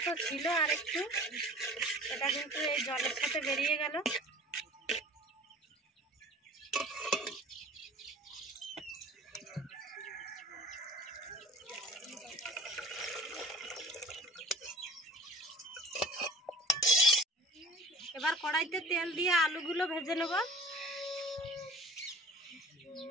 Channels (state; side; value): normal; both; correlation 0.46